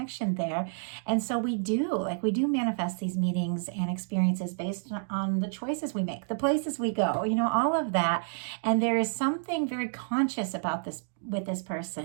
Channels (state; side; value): silent; left; digital silence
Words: there. And so we do manifest these meetings and experiences based on the choices we make, the places we go, all of that. And there is something very conscious about this with this